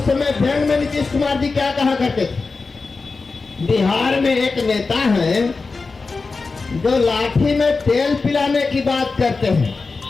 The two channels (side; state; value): right; quieter; 4.1 dB